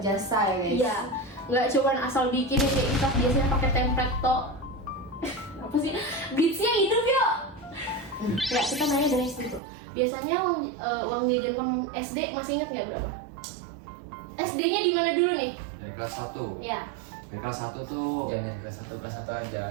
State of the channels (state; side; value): drops out; left; at 9.6 s